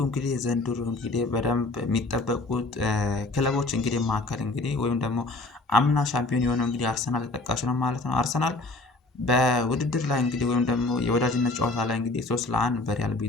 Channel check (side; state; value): right; quieter; 3.1 dB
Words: እንግዲህ ዘንድሮ እንግዲህ በደንብ የሚጠበቁት ክለቦች እንግዲህ መካከል እንግዲህ ወይም ደግሞ አምና ሻምፒዮን የሆነው እንግዲህ አርሰናል ተጠቃሽ ነው ማለት ነው። አርሰናል በውድድር ላይ እንግዲህ ወይም ደግሞ የወዳጅነት ጨዋታ ላይ እንግዲህ 3-1 በሪያል